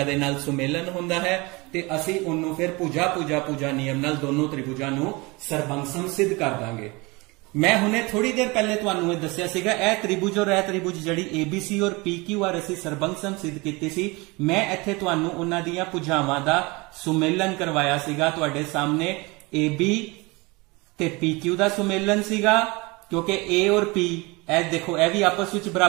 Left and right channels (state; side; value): quieter; left; 25.2 dB